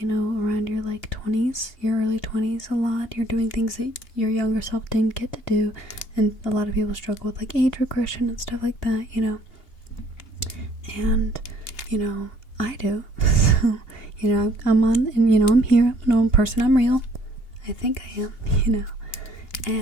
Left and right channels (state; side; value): late; right; 2.8 ms